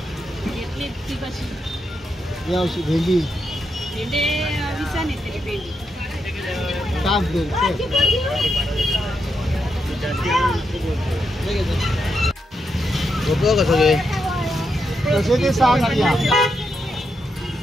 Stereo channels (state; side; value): normal; both; correlation 0.83